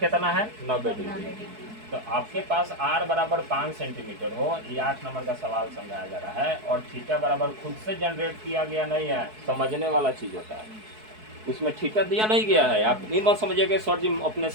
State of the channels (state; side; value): late; left; 4.6 ms